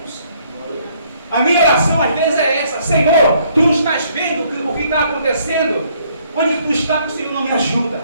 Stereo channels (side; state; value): both; inverted; correlation -0.66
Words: A minha oração às vezes é essa: Senhor, tu não estás vendo o que está acontecendo? Onde tu está, que o Senhor não me ajuda?